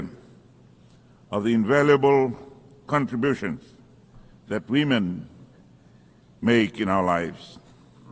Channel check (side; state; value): both; identical; correlation 1.00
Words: of the invaluable contributions that women make in our lives.